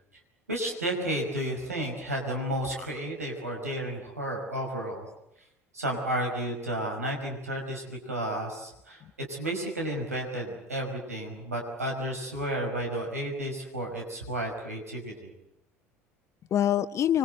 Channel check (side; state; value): both; normal; correlation 0.24